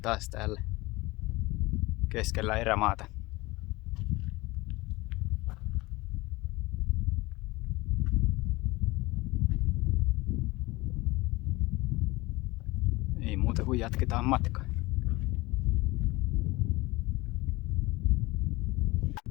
täällä keskellä erämaata. Ei muuta kuin jatketaan matkaa.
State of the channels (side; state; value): right; quieter; 21.6 dB